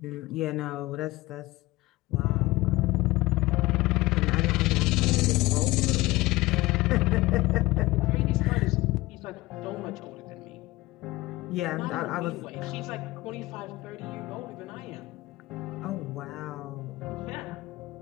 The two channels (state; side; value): quieter; right; 19.4 dB